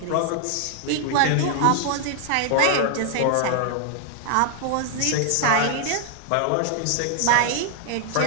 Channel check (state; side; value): different; both; correlation 0.00